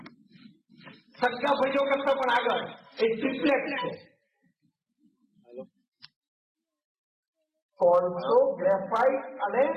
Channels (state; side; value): identical; both; correlation 1.00